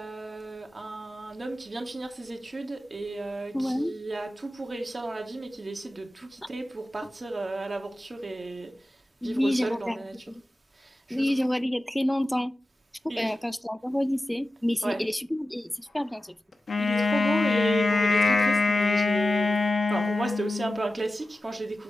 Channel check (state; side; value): normal; both; correlation 0.94